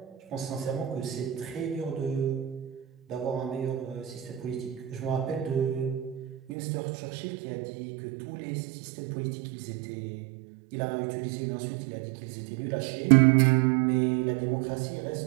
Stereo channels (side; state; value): left; drops out; at 6.4 s